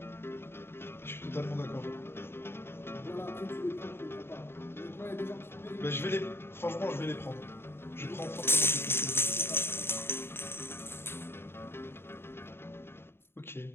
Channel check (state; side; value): late; right; 0.11 ms